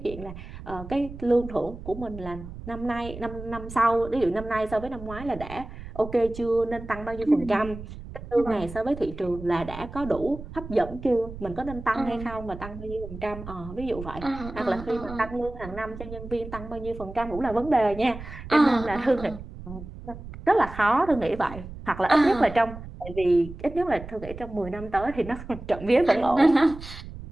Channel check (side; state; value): right; noise; rumble, 12 dB below the sound